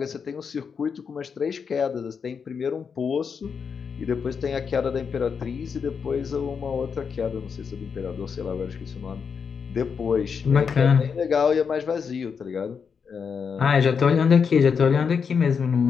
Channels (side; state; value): right; quieter; 6.2 dB